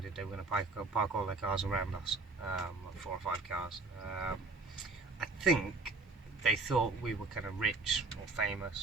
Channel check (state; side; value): quieter; left; 3.7 dB